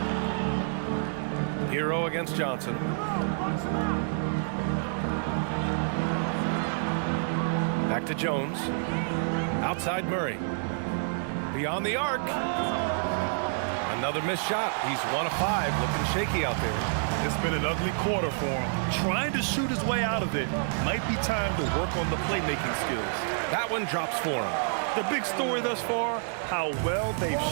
Hero against Johnson. Back to Jones. Outside Murray. Beyond the arc. Another missed shot. He's 1 of 5. Looking shaky out there. It's been an ugly quarter for him. Trying to shoot his way out of it. Might be time to work on the playmaking skills. That one drops for him. The big story thus far, how well they've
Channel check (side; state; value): left; silent; 59 dB below the other